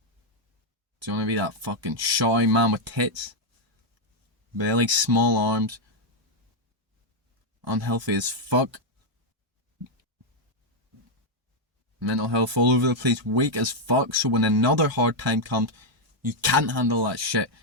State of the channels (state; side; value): normal; both; correlation 0.01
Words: Do you want to be that fucking shy man with tits? Belly, small arms, unhealthy as fuck, mental health all over the place, weak as fuck, so when another hard time comes, you can't handle that shit?